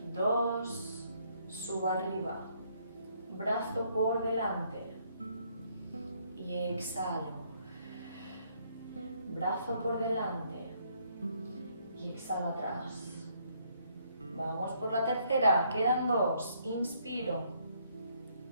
2, subo arriba. Brazo por delante. Y exhalo. Brazo por delante. Y exhalo atrás. Vamos por la tercera. Quedan 2. Inspiro.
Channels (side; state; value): both; inverted; correlation -0.69